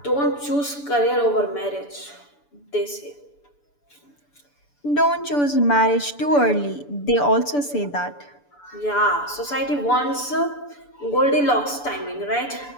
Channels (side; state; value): right; late; 6.9 ms